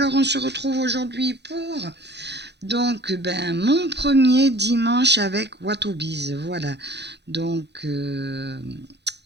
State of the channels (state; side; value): late; left; 0.50 ms